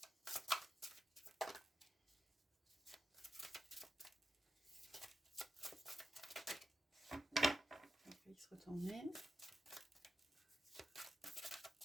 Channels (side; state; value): both; normal; correlation 0.89